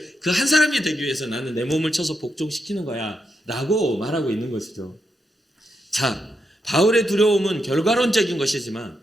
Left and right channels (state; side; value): normal; both; correlation 0.84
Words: 그 한 사람이 되기 위해서 나는 내 몸을 쳐서 복종시키는 거야 라고 말하고 있는 것이죠. 자, 바울의 두려움은 결과론적인 것이지만